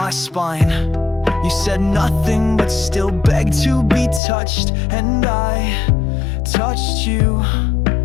spine. You said nothing, but still begged to be touched, and I touched you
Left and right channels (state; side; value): drops out; right; at 4.2 s